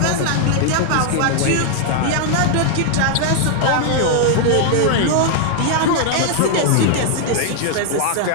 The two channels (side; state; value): both; different; correlation 0.00